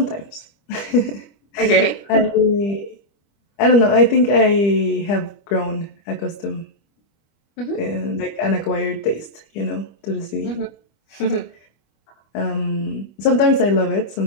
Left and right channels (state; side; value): late; right; 25 ms